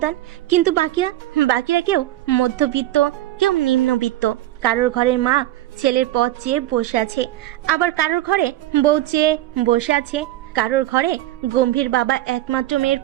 কিন্তু বাকিরা কেউ মধ্যবিত্ত, কেউ নিম্নবিত্ত। কারোর ঘরের মা ছেলের পথ চেয়ে বসে আছে, আবার কারোর ঘরে বউ চেয়ে বসে আছে, কারোর ঘরে গম্ভীর বাবা একমাত্র মেয়ের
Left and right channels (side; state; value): left; quieter; 15.0 dB